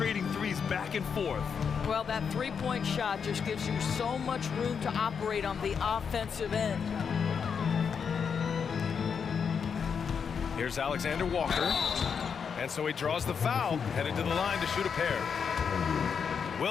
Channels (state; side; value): quieter; right; 6.5 dB